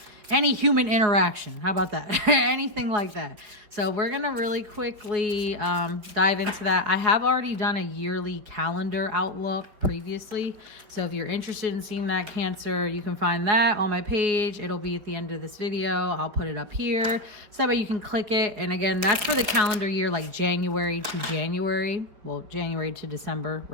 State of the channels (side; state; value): left; late; 4.9 ms